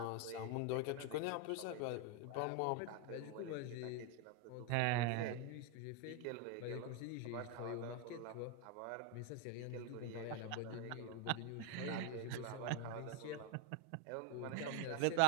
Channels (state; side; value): different; both; correlation 0.01